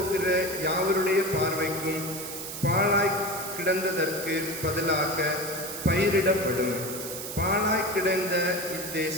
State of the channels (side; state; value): right; noise; hiss, 7 dB below the sound